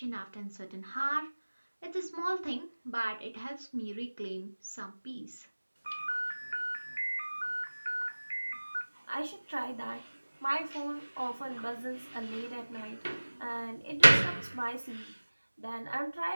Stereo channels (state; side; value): inverted; both; correlation -1.00